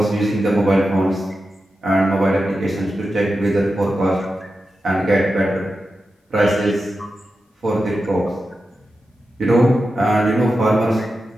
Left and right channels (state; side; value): normal; both; correlation 0.91